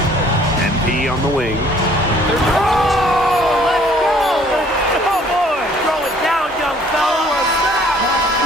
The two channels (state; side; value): normal; both; correlation 0.58